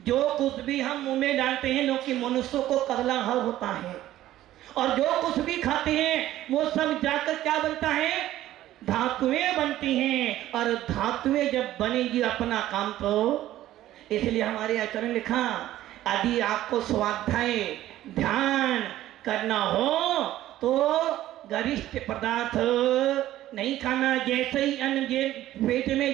कुछ भी हम मुंह में डालते हैं, क्योंकि मनुष्यों को कगला हर होता है, और जो कुछ भी खाते हैं वो सब जाकर क्या बनता है, धातुएं बनती हैं, और धातुएं जब बनेगी अपना काम तो, इसलिए हमारे आचार्य ने लिखा, यदि आपको स्वाध्याय ध्यान करना हो तो गरिष्ठ पदार्थ नहीं खाना। जैसे ही अन्न पेट में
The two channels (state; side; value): quieter; left; 14.0 dB